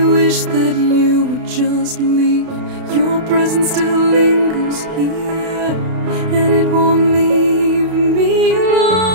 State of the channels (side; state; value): left; late; 32 ms